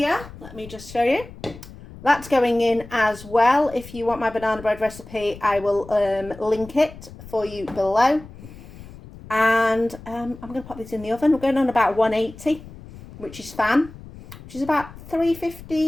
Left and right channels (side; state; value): left; noise; rumble, 17 dB below the sound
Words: Let me just show you. That's going in as well. If you want my banana bread recipe, I will link it for you below. And I'm going to pop this in the oven. We're going on about 180, which is fan, which is about